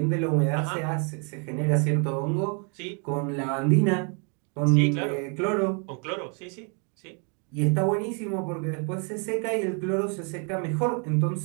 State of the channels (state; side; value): quieter; left; 37.5 dB